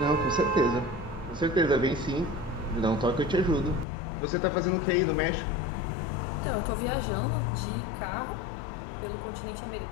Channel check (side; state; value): right; drops out; at 3.9 s